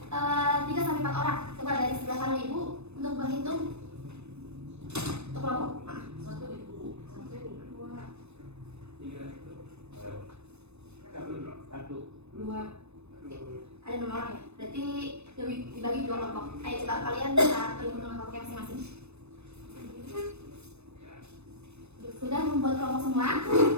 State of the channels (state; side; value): late; left; 0.81 ms